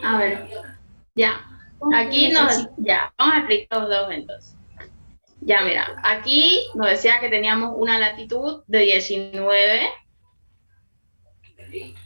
A ver. Ya. Aquí ya, vamos a explicar los dos entonces. Ya, mira, aquí nos decía que teníamos una latitud de 19, que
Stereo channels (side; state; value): both; inverted; correlation -1.00